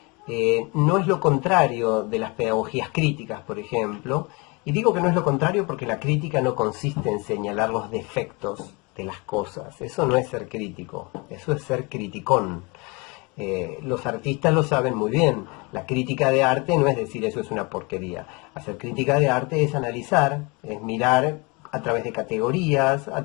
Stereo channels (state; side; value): quieter; right; 28.4 dB